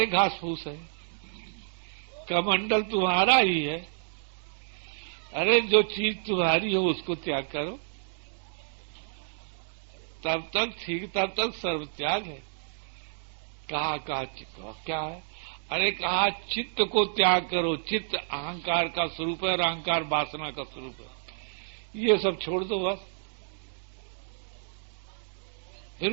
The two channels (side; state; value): left; silent; digital silence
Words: घास फूस है, कमंडल तुम्हारा ही है। अरे जो चीज तुम्हारी हो उसको त्याग करो, तब तक ठीक, तब तक सर्व त्याग है। कहा क्या है? अरे कहा चित्त को त्याग करो, चित्त अहंकार का स्वरूप है और अहंकार वासना का स्वरूप है, ये सब छोड़ दो बस, फिर